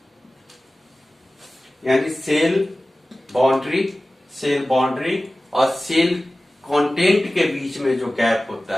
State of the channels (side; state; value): both; normal; correlation 0.97